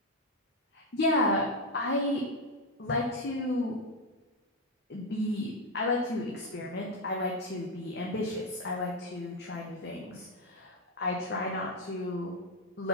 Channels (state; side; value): normal; both; correlation 0.06